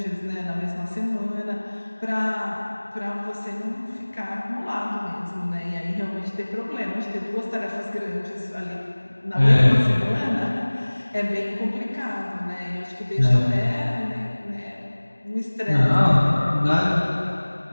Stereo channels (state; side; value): inverted; both; correlation -1.00